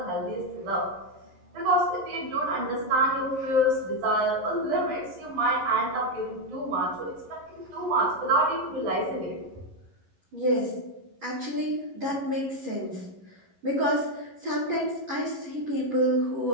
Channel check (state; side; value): late; left; 11 ms